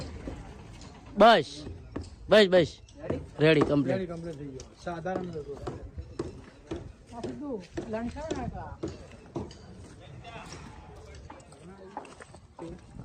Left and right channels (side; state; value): both; identical; correlation 1.00